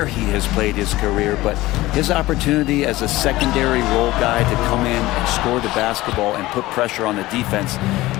he has played his career. But his opportunity as a secondary role guy to come in and score the basketball and put pressure on the defense,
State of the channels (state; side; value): quieter; right; 18.1 dB